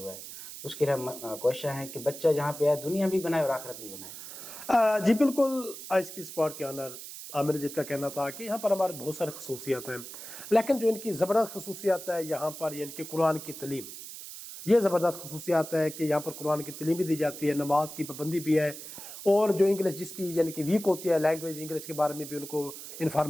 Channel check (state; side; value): noise; right; hiss, 12 dB below the sound